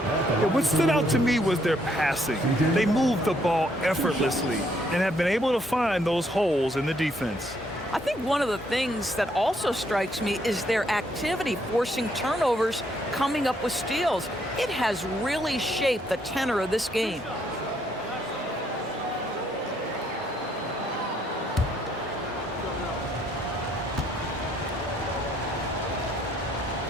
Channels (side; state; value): both; normal; correlation 0.70